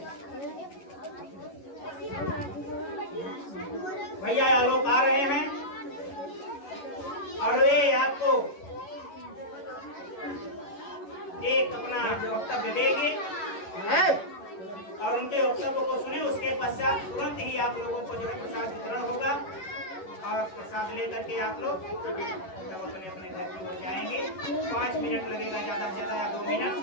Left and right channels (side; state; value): right; late; 11 ms